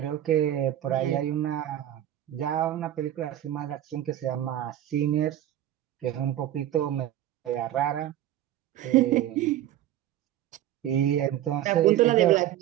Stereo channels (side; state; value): left; quieter; 12.4 dB